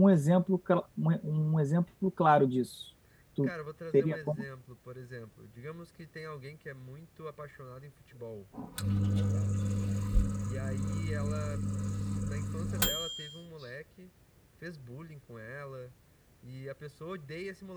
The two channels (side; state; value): both; identical; correlation 1.00